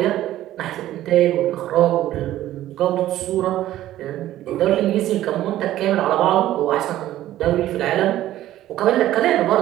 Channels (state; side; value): quieter; left; 13.8 dB